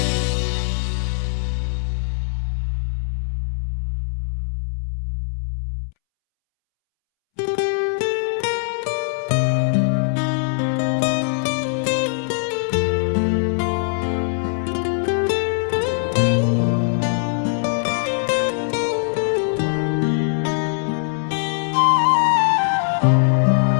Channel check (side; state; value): right; silent; 65 dB below the other